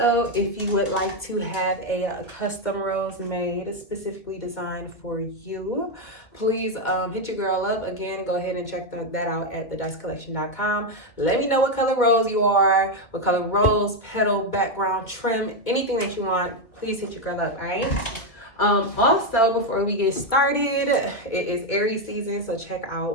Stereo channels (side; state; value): right; late; 2.3 ms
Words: if you would like to have a custom rose made specifically designed for you, please hit your girl up. Again, go ahead and check that out at thedicecollection.com. Let me know what color rose you are, what color rose, petal, background, trim, anything that you want. Please hit your girl up, all right? Also, before we get started, it is Aries season, so check